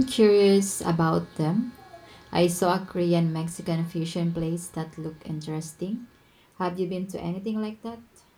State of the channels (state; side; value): identical; both; correlation 1.00